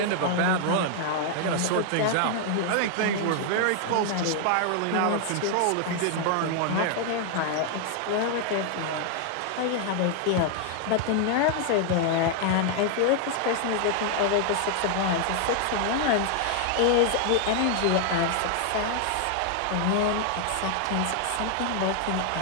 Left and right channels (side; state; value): both; different; correlation 0.00